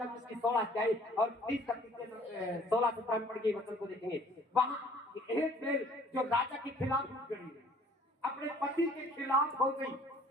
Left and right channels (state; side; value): normal; both; correlation 0.55